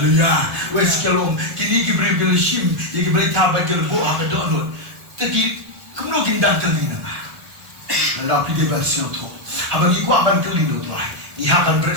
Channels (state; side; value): late; left; 1.2 ms